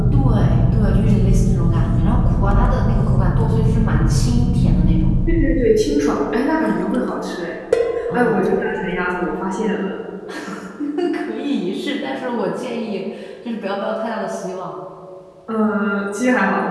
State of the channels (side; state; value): both; identical; correlation 1.00